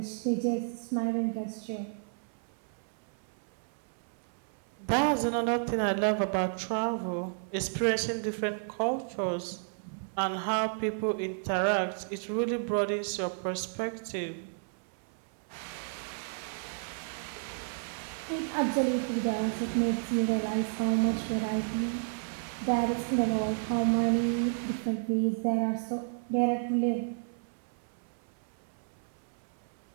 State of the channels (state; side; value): silent; left; 56 dB below the other